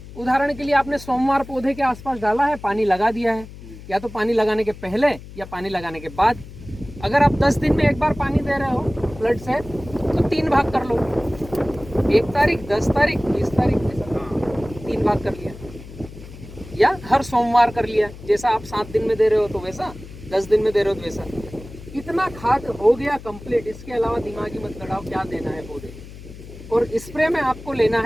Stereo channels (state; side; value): noise; left; hum, 16 dB below the sound